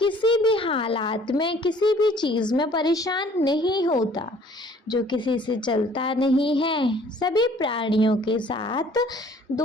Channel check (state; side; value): normal; both; correlation 0.55